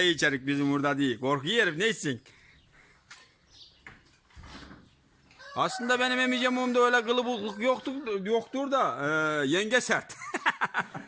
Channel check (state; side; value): identical; both; correlation 1.00